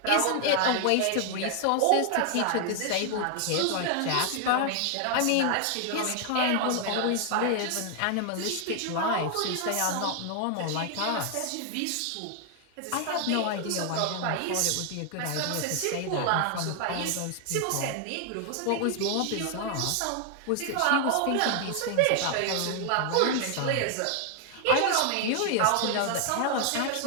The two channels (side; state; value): both; different; correlation 0.00